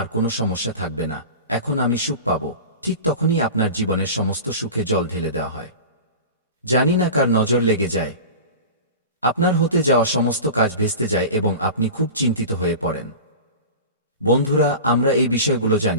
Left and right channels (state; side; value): inverted; both; correlation -0.33